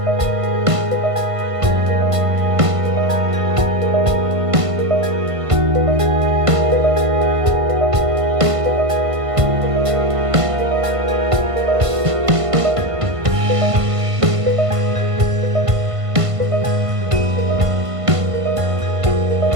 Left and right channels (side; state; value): left; late; 1.5 ms